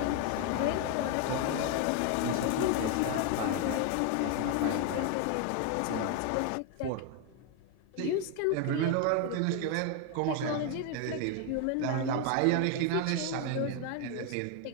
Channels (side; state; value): both; different; correlation 0.01